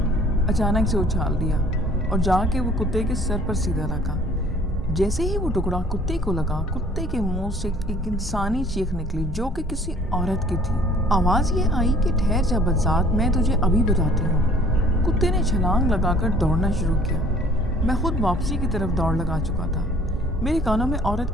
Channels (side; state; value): both; normal; correlation 0.54